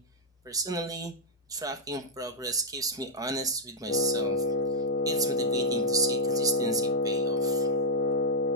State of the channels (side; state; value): both; normal; correlation -0.04